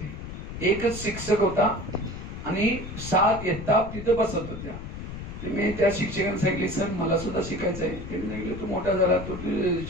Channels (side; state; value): left; noise; rumble, 9 dB below the sound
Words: एकच शिक्षक होता आणि 7 इयत्ता तिथं बसत होत्या. मी त्या शिक्षकांना सांगितले, सर मला सुद्धा शिकायचं आहे. त्यांनी सांगितलं, तू मोठा झाला तू